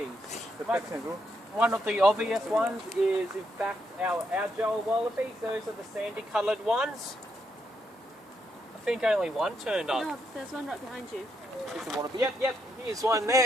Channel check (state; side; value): normal; both; correlation 0.78